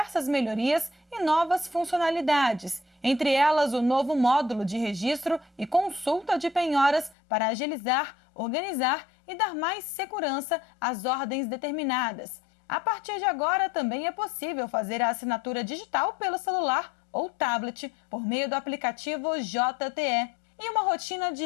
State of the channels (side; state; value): right; drops out; at 7.2 s